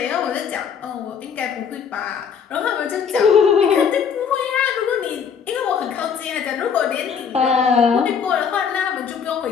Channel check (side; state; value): right; quieter; 6.9 dB